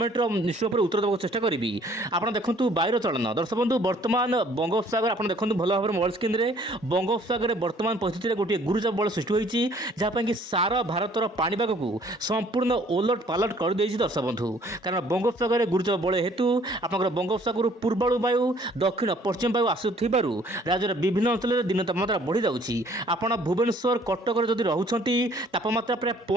रो निश्चय पर उत्तर देबाक चेष्टा करिवि। आपण देखंतु वायुर चलन दर्शक बंधु वर्तमान बंगोपसागर आपण देखंतु भलो भाबरे मोबाइल स्क्रीन रे बंगोपसागर वर्तमान परिस्थिति रे गोटे गुरुचाप बल सृष्टि होईछि जहा पय कि सारा भारतर पाणीपाग को संपूर्ण ओलट पालट कर देछि। दर्शक बंधु कारण बंगोपसागर गुरुचाप बल हेतु आपनकर बंगोपसागर पूर्वाणु वायु दक्षिण पश्चिम वायु आसुथिबारु राज्यर विभिन्न अंचल रे दिन तापमात्रा बढ़ी जाउछि। आपण भुवनेश्वर कटक रे जदि रहुछंती तापमात्रा प्राय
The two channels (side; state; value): both; normal; correlation 0.58